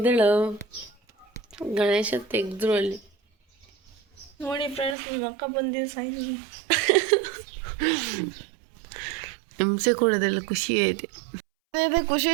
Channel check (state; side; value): drops out; left; at 5.0 s